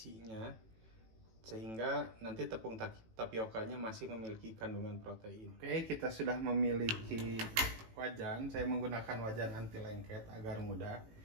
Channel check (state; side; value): late; left; 18 ms